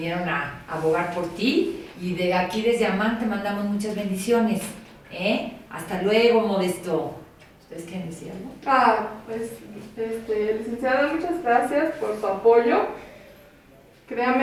a abogar por ti y de aquí desde AMAC te mandamos muchas bendiciones. Hasta luego, Modesto. ¿Ustedes quieren decir algo? Licenciada, muchas gracias por su apoyo.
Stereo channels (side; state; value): both; identical; correlation 1.00